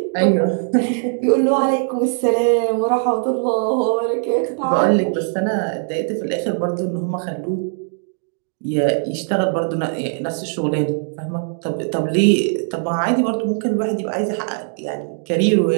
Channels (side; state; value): left; silent; digital silence